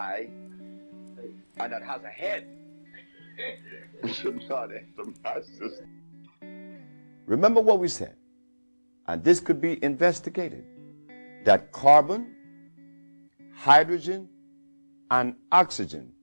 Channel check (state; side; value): inverted; both; correlation -1.00